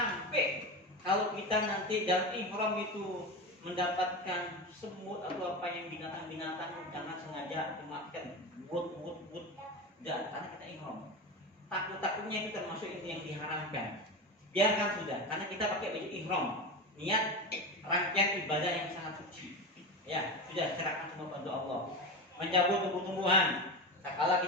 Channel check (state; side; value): normal; both; correlation 0.22